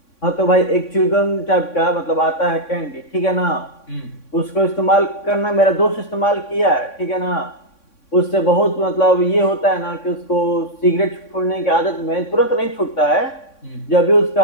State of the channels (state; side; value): late; right; 3.6 ms